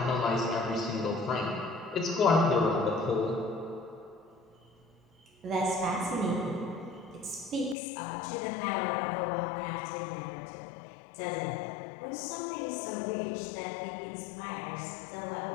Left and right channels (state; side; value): drops out; right; at 7.8 s